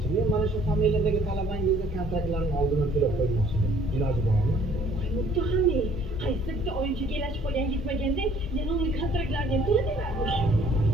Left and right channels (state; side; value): normal; both; correlation 0.58